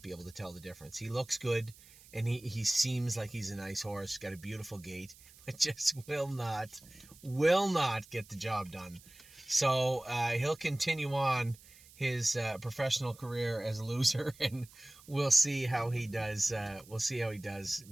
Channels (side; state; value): right; noise; hiss, 23 dB below the sound